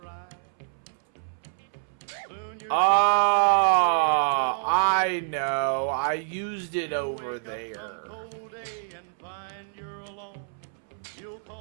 Soon you're I know. I used it over there. cold day and find you're alone. You'll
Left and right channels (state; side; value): silent; left; 60 dB below the other